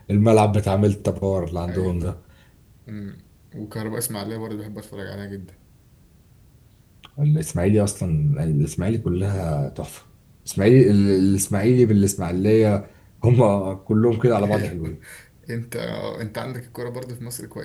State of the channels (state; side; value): identical; both; correlation 1.00